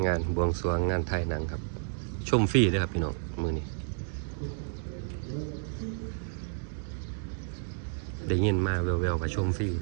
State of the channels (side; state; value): left; silent; digital silence